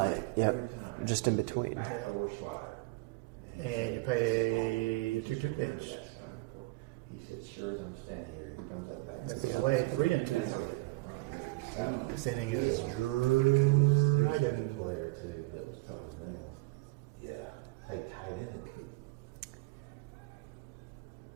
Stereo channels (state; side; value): quieter; left; 22.3 dB